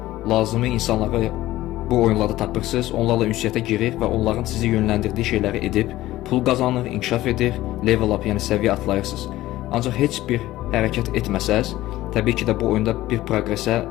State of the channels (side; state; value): right; quieter; 15.9 dB